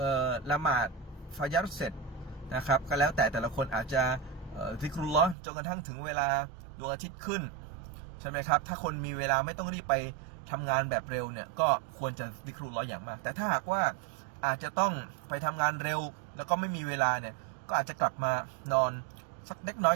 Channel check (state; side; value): drops out; left; at 5.4 s